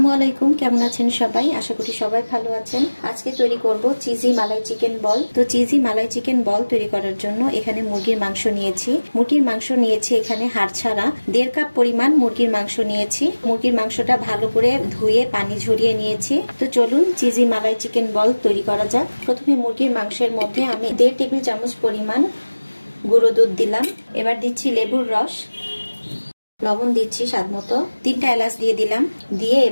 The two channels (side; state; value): both; inverted; correlation -1.00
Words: আলাইকুম, কেমন আছেন সবাই? আশা করি সবাই ভালো আছেন। আজকে তৈরি করব চিজি মালাই চিকেন বল। তো চিজি মালাই চিকেন বল তৈরি করার জন্য এখানে মুরগির মাংস নিয়েছি। এখানে হাড় ছাড়া 1.5 কাপ পরিমাণ মুরগির মাংস নিয়েছি। মুরগির মাংসটা ভালো করে ধুয়ে পানি ঝরিয়ে নিয়েছি। তো চলুন চিজি মালাই চিকেন বল তৈরি করা যাক। প্রথমে মুরগির মাংসের মধ্যে আমি 1.5 টেবিল চামচ পরিমাণ গুঁড়ো দুধ দিলাম। এবার দিচ্ছি লেবুর রস, লবণ দিচ্ছি স্বাদ মতো, 3টা এলাচ দিয়ে দিলাম। দিয়ে